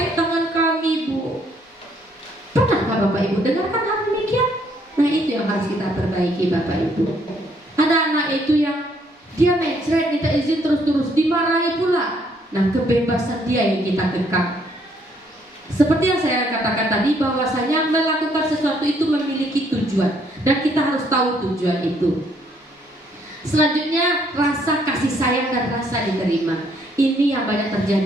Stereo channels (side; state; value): both; normal; correlation 0.68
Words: tangan kami, Bu. Pernahkah Bapak Ibu dengarkan hal demikian? Nah, itu yang harus kita perbaiki, Bapak Ibu. Ada anak itu yang dia mencret, minta izin terus-terus, dimarahi pula. Nah, kebebasan dia yang kita kekang. Seperti yang saya katakan tadi, bahwasanya melakukan sesuatu itu memiliki tujuan, dan kita harus tahu tujuan itu. Selanjutnya, rasa kasih sayang dan rasa diterima. Ini yang banyak